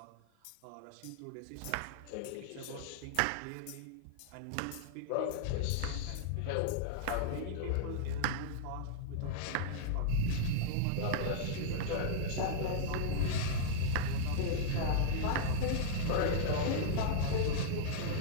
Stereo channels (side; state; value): both; different; correlation -0.02